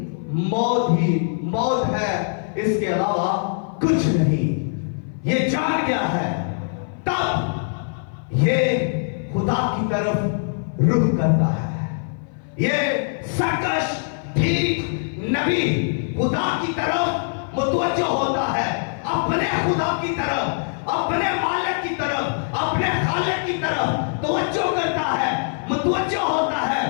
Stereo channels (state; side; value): silent; right; 56 dB below the other